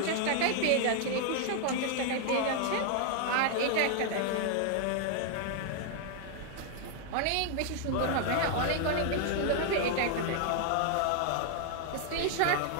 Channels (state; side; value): different; both; correlation 0.00